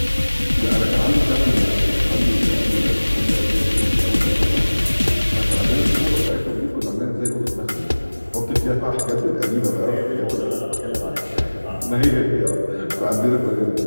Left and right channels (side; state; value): both; inverted; correlation -1.00